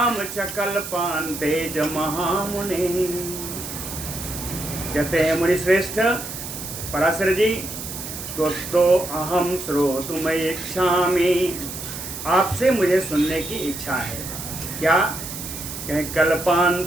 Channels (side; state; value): right; noise; hiss, 8 dB below the sound